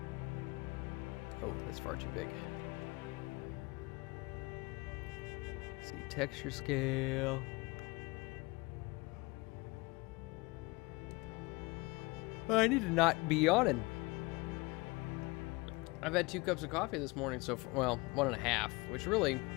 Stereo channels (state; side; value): quieter; right; 24.8 dB